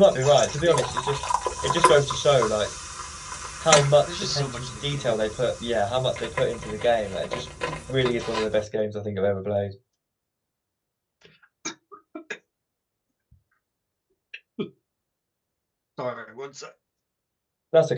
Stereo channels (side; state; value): both; identical; correlation 1.00